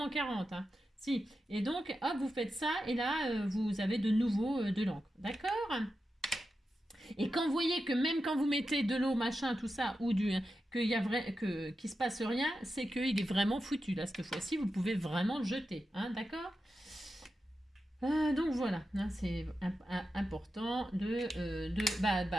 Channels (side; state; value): both; normal; correlation 0.90